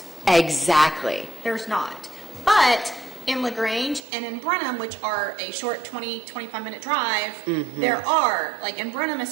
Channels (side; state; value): left; drops out; at 4.0 s